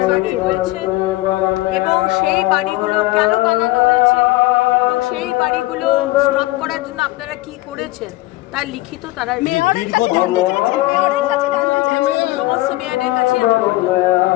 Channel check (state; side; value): quieter; right; 18.9 dB